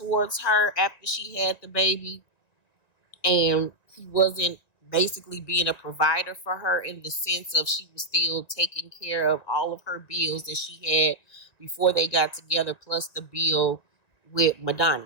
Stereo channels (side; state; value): right; late; 1.9 ms